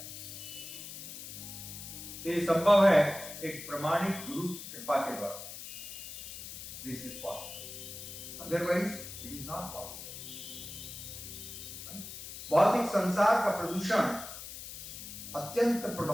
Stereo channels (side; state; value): left; noise; hiss, 10 dB below the sound